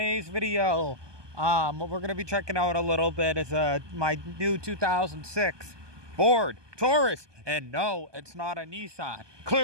video, what we're gonna be checking out a little bit is my new 2006 Ford Taurus, and no, it's not a Nissan.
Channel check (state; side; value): late; left; 1.2 ms